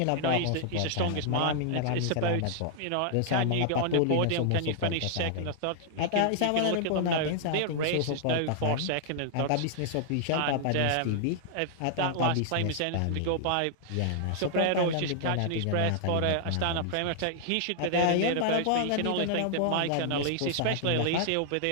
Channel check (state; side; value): different; both; correlation -0.01